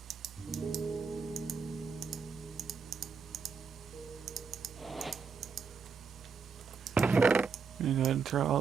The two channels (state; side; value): quieter; left; 5.5 dB